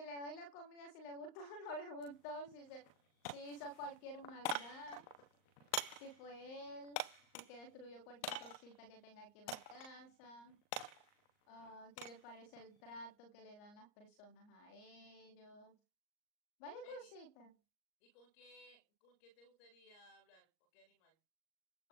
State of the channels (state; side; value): late; right; 38 ms